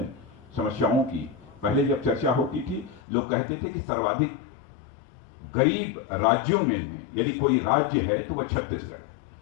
समस्याओं की पहले जब चर्चा होती थी, लोग कहते थे कि सर्वाधिक गरीब राज्यों में यदि कोई राज्य है तो वह छत्तीसगढ़ है।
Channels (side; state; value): right; drops out; at 3.0 s